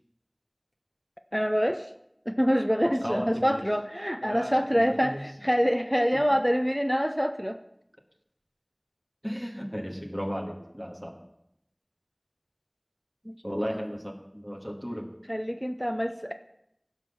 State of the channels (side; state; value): both; identical; correlation 1.00